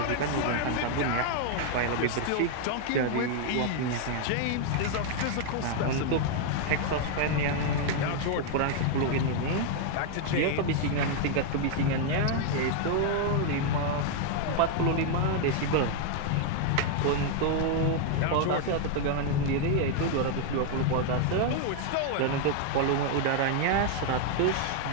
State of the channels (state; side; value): different; both; correlation 0.00